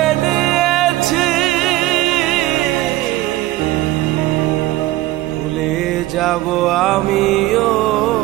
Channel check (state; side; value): quieter; left; 16.7 dB